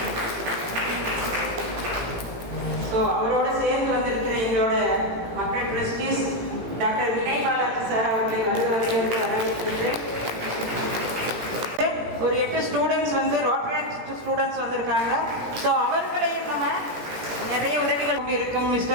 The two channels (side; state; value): left; late; 17 ms